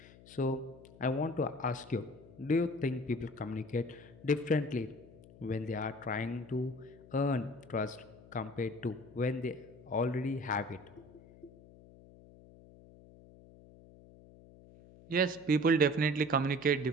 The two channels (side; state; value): left; noise; hum, 22 dB below the sound